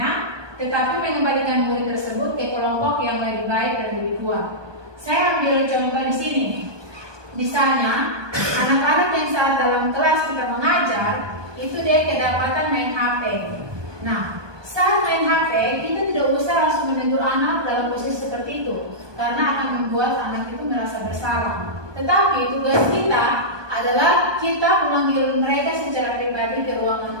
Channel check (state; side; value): late; left; 1.2 ms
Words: tetapi mengembalikan murid tersebut ke kelompok yang lebih baik dan lebih kuat. Saya ambil contoh di sini. Misalnya, anak-anak yang saat dalam kelas kita mengajar, itu dia kedapatan main HP. Nah, saat main HP, kita tidak usah langsung menegur anak dalam posisi seperti itu, karena akan membuat anak itu merasa bersalah. Tetapi tugas kita adalah kita memanggil mereka secara pribadi ke